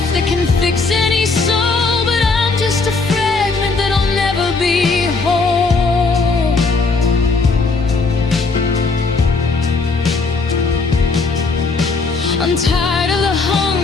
that can fix any soul, but I'm just a fragment that'll never be whole. I'm tired of the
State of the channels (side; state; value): right; quieter; 4.0 dB